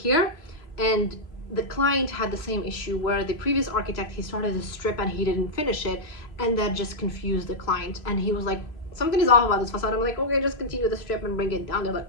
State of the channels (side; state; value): right; late; 3.0 ms